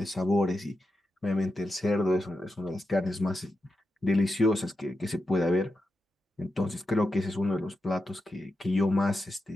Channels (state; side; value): normal; both; correlation 0.88